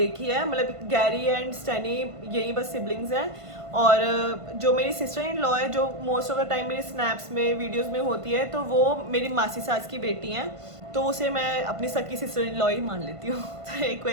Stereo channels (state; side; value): late; left; 1.5 ms